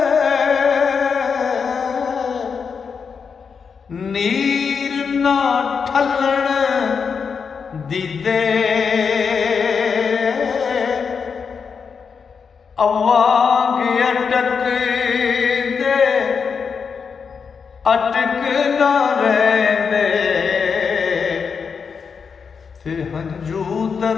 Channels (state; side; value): quieter; right; 5.9 dB